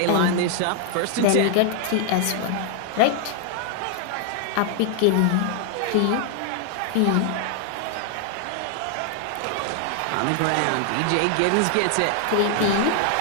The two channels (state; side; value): different; both; correlation 0.00